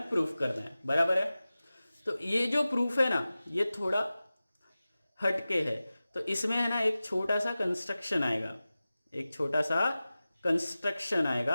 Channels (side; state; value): both; inverted; correlation -0.96